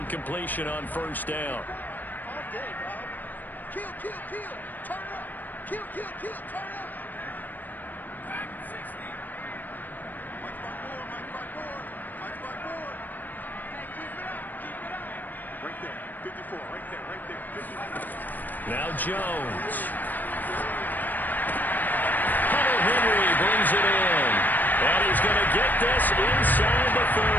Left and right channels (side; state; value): right; late; 0.087 ms